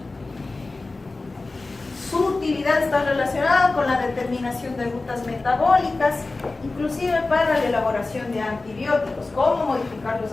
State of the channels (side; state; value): right; quieter; 3.4 dB